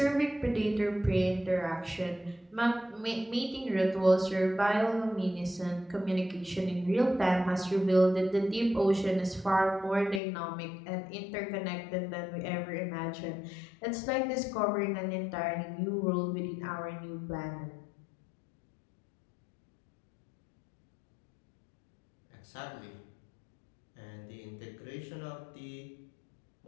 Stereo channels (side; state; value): right; drops out; at 10.2 s